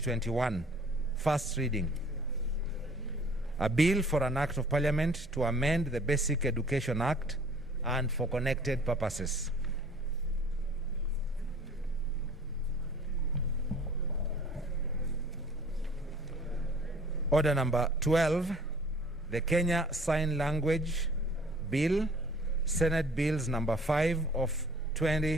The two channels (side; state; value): left; noise; hum, 22 dB below the sound